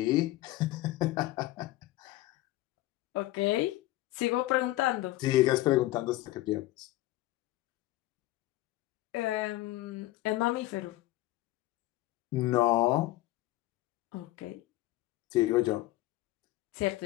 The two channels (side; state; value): right; quieter; 17.0 dB